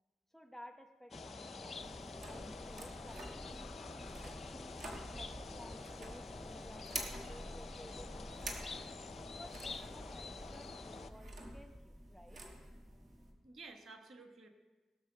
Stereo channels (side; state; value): both; normal; correlation 0.82